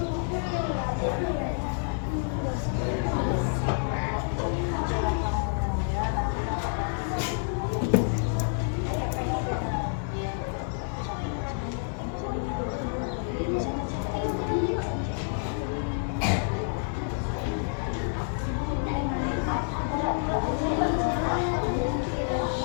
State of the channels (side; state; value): right; silent; digital silence